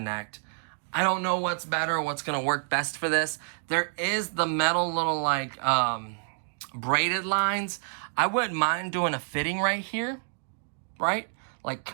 I don't know what's better, what's gonna work best for this. There is the metal little like braided lines. I wouldn't mind doing a fitting right here, right? Like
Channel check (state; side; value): silent; left; 59 dB below the other